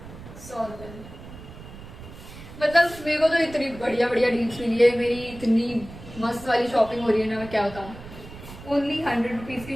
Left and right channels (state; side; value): noise; right; rumble, 15 dB below the sound